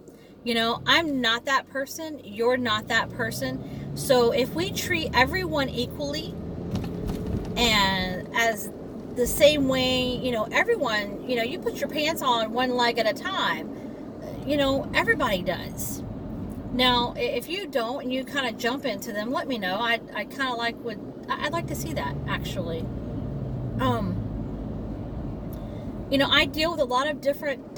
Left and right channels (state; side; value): identical; both; correlation 1.00